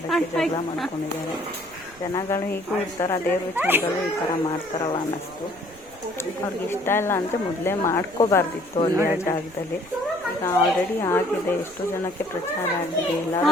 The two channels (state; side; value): noise; right; rumble, 26 dB below the sound